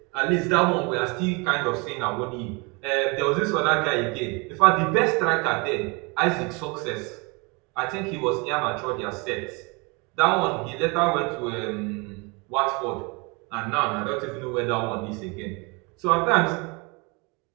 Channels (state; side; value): quieter; left; 29.3 dB